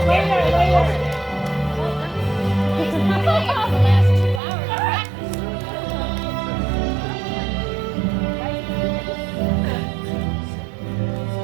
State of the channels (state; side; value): drops out; left; at 4.4 s